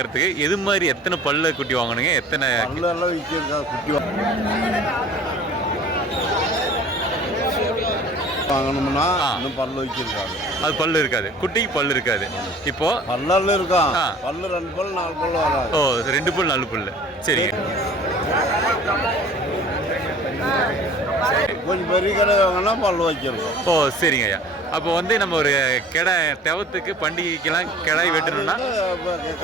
எது மாதிரி எத்தனை பல்லு குட்டி வாங்கணுங்க? எத்தனை பல்லெல்லாம் விற்கிறதா குட்டி வாங்கணும்னா இன்னும் பல்லு வைச்சிருக்காங்க. அது பல்லு இருக்காது, குட்டிக்கு பல்லு இருக்காது. இப்போ பல்லு இருக்கும், பல்லு 2 பல்லு 4 பல்லு வராது. ஓ 2 பல்லு 4 பல்லு. சரிங்க. கொஞ்சம் பெரிய கடை வாங்கினா பல்லு வச்சிருக்கோம். ஓ சரிங்க ஐயா. அப்போ வந்து நம்ம ஒரு கடை தெவத்துக்கு பண்டிகைக்கெல்லாம் கிடாய் வெட்டணும்னா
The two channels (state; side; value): normal; both; correlation 0.46